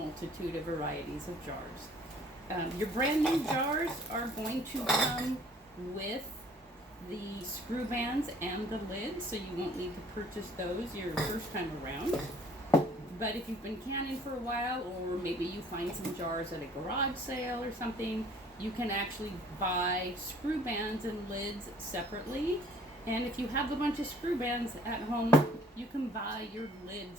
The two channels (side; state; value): both; normal; correlation 0.56